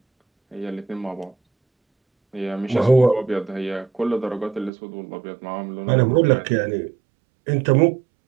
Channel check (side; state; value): left; drops out; at 4.7 s